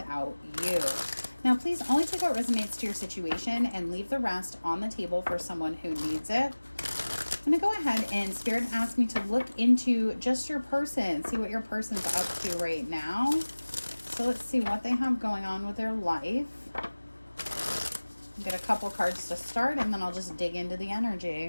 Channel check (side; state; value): both; inverted; correlation -1.00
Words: you. Now, please only take what resonates to your situation and leave the rest on the table for someone who needs it. I'm going to go ahead and Spirit asked me to look into just your person, see what your person's up to right now. So let's see what they have going on with their life. Get a couple cards to start, and then I'll just dig into the